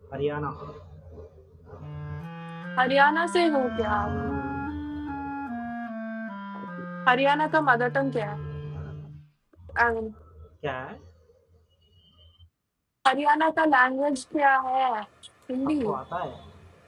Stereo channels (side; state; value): both; identical; correlation 1.00